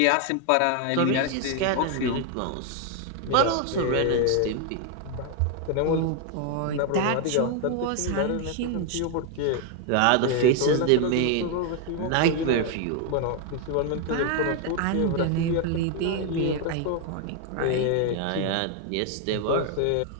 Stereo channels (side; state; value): both; different; correlation 0.00